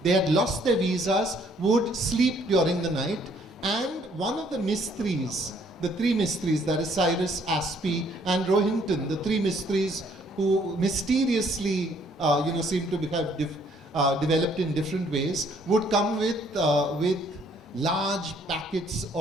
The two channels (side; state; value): both; normal; correlation 0.64